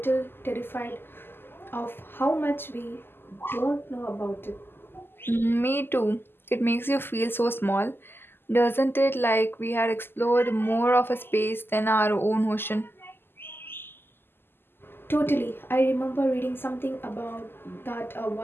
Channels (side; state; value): right; late; 0.10 ms